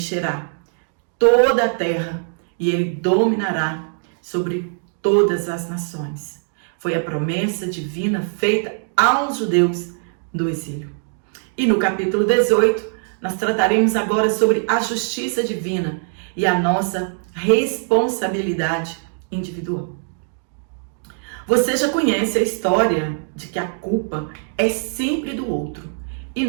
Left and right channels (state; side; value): silent; left; 65 dB below the other